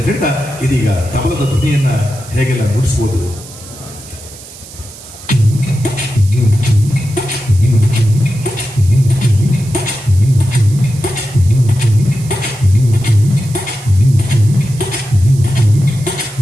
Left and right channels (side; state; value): right; noise; hiss, 17 dB below the sound